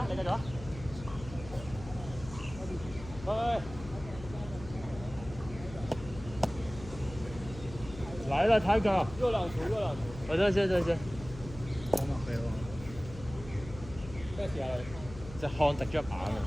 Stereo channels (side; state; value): left; noise; hum, 14 dB below the sound